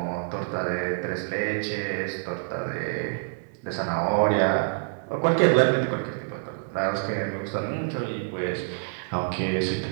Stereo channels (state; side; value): silent; left; 60 dB below the other